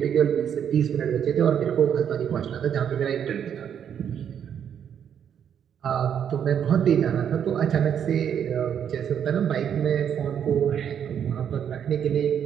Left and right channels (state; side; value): quieter; left; 8.6 dB